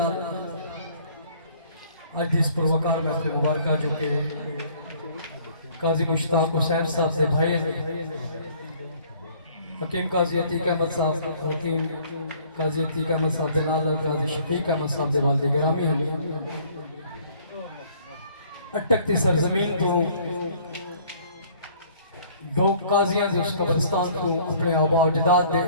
آج اس پروکار میں اپنے مبارکہ جو کہ قاضی مشتاق حسین صاحب سے بھائی حکیم قاضی عتیق احمد صاحب حکیم قاضی عتیق احمد صاحب دے نال قاضی شفیق احمد صاحب دے والد گرامی ہیں اٹکتی سرزمین تو دو قاضیاں دے اس قبرستان کو اپنے آبا و اجداد دے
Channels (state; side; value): inverted; both; correlation -0.57